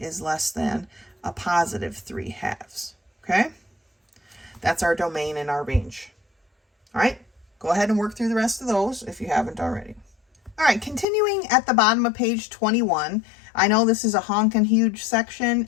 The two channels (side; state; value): right; drops out; at 11.1 s